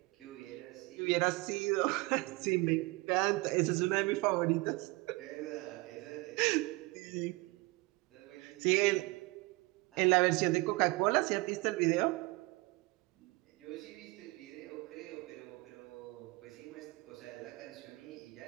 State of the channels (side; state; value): left; quieter; 24.0 dB